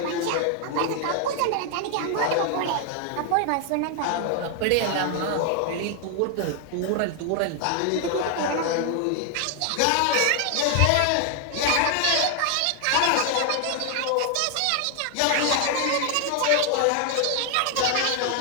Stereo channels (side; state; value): both; different; correlation 0.00